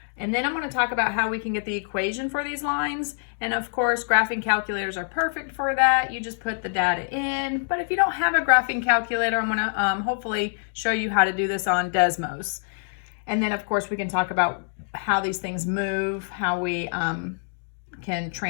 And then I'm going to talk about how we can get the equation for these lines. And of course, graphing calculators are perfect for that. You just put the data in. But if you don't have a graphing calculator, I'm going to hopefully show you how to do this on Desmos. And then of course, we can talk about how these things move, how we can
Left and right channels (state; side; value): silent; right; digital silence